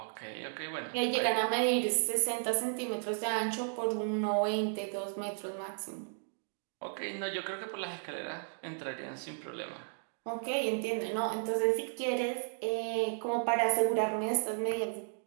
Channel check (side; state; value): left; silent; digital silence